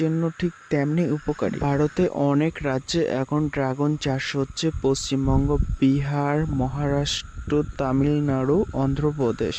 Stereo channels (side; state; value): both; identical; correlation 1.00